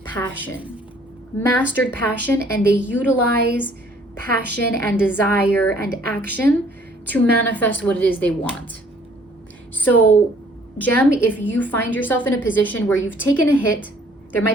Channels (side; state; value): both; normal; correlation 0.59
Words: passion. Mastered passion, and they utilize passion and desire and action to manifest what it is they want. So, Gem, if you find yourself in a position where you've taken a hit, there